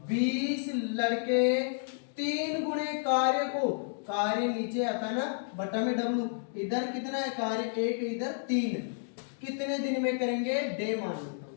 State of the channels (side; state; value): right; silent; digital silence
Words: 3 गुणे कार्य को, कार्य नीचे आता ना बटा में W, इधर कितना है कार्य 1, इधर 3, कितने दिन में करेंगे? डे मान लेता हूं,